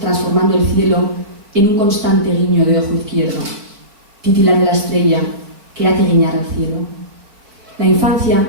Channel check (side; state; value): left; late; 4.6 ms